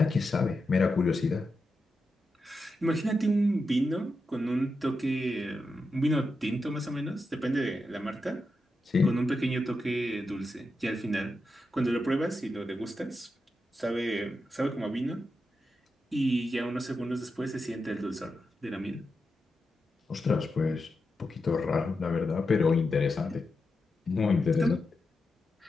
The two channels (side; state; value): both; normal; correlation 0.88